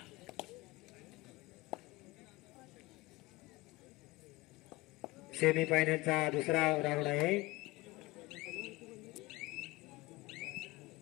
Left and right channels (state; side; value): quieter; right; 20.7 dB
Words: सेमी फायनलचा दुसरा राऊंड आहे.